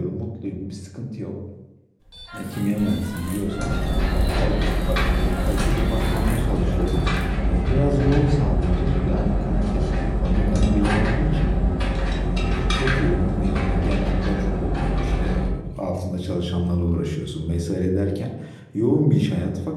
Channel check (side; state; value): both; identical; correlation 1.00